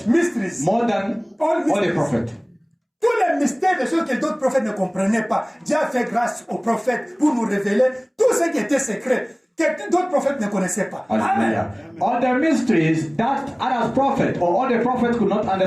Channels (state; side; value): identical; both; correlation 1.00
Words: Mysteries. More than all the prophets. Tous les mystères, des choses que d'autres prophètes ne comprenaient pas. Dieu a fait grâce aux prophètes pour nous révéler tout ce qui était secret, que d'autres prophètes ne connaissaient pas. Hallelujah. All the mysteries that other prophets or all the prophets could not